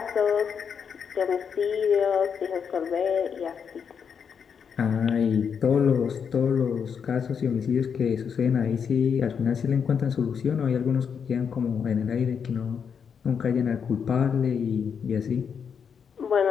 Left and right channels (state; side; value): quieter; right; 6.9 dB